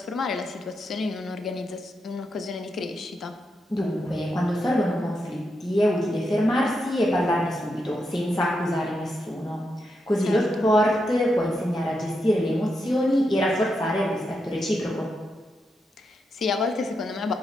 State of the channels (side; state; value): both; normal; correlation 0.84